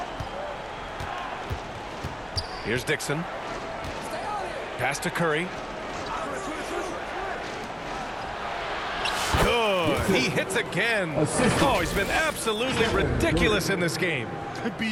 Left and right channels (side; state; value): both; identical; correlation 1.00